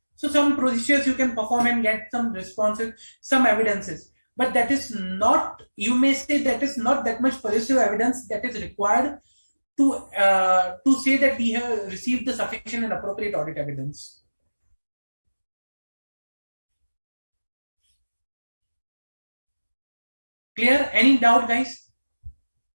so some procedures you can perform and get some responses, some evidences, but that is not, you may say that is not that much persuasive evidence that is required to say that we have received the sufficient and appropriate audit evidence. Clear? Any doubt, guys?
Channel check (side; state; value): both; inverted; correlation -1.00